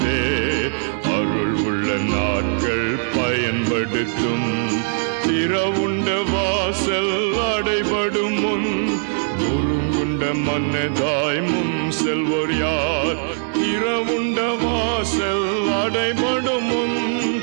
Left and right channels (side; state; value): left; silent; digital silence